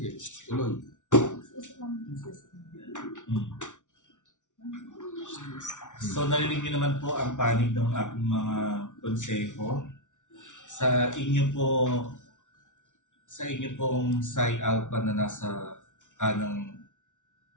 tuloy. So narinig niyo naman po ang panig ng aking mga konseho. Sa inyo pong Psi Alpha na nasa kanang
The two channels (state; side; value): late; right; 0.86 ms